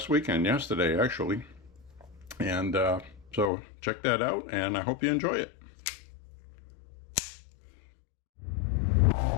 weekend, yesterday actually. And so check that out, and I hope you enjoy it.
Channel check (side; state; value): right; drops out; at 3.5 s